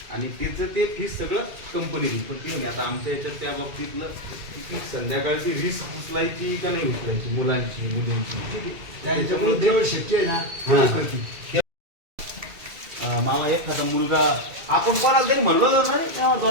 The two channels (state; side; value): late; left; 2.3 ms